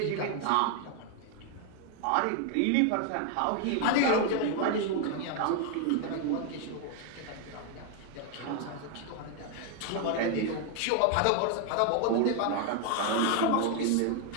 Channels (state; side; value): different; both; correlation 0.01